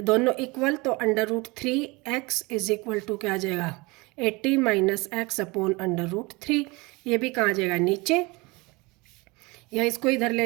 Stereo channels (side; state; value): left; quieter; 25.1 dB